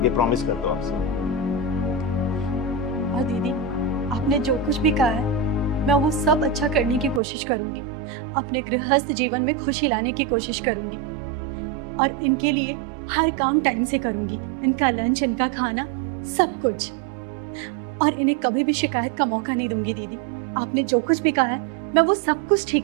ये प्रॉमिस करता हूँ आपसे। और दीदी, आपने जो कुछ भी कहा है मैं वो सब अच्छा करने की कोशिश करूंगी, अपने गृहस्थ जीवन में खुशी लाने की कोशिश करूंगी, और इनके लिए हर काम टाइम से करूंगी, इनका लंच, इनका खाना, सब कुछ, और इन्हें कभी भी शिकायत का मौका नहीं दूंगी। दीदी, आपने जो कुछ भी कहा है मैं वो सब कुछ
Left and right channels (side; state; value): left; drops out; at 7.2 s